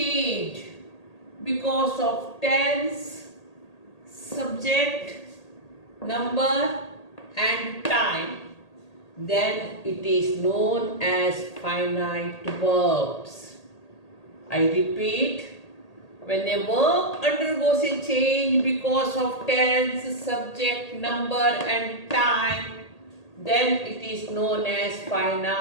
because of tense, subject, number and time, then it is known as finite verbs. I repeat. When a verb undergoes a change because of tense, subject, number and time, then it is known as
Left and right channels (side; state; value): right; late; 1.8 ms